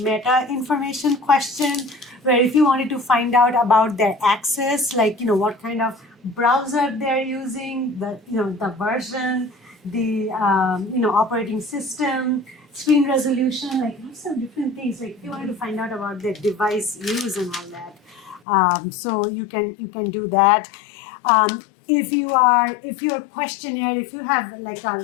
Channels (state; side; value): drops out; right; at 18.4 s